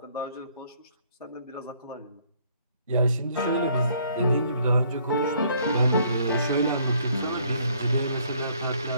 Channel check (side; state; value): both; inverted; correlation -0.64